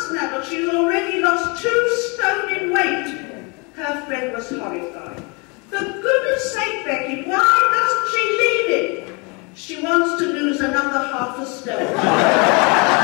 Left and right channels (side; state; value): right; quieter; 30.8 dB